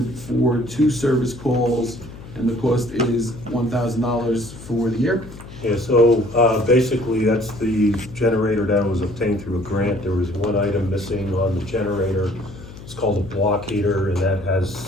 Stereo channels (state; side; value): noise; left; hum, 16 dB below the sound